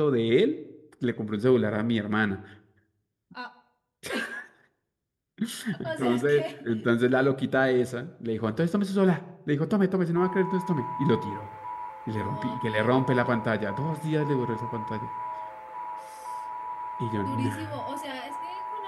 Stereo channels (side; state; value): both; identical; correlation 1.00